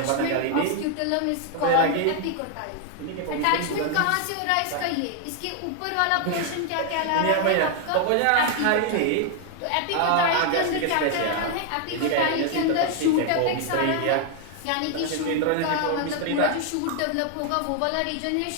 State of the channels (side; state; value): both; different; correlation 0.00